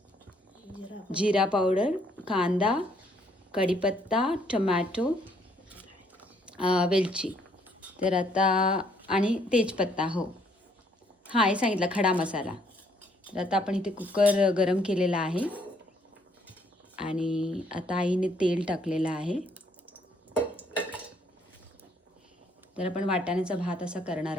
जिरा पावडर, कांदा, कढीपत्ता, टमॅटो, वेलची. तर आता आणि तेजपत्ता. हो हां, हे सांगितलं खडा मसाला. तर आता आपण इथे कुकर गरम केलेला आहे आणि आता आईने तेल टाकलेलं आहे. तर आपण वाटाण्याचा भात असा करणार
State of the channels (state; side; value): normal; both; correlation 0.67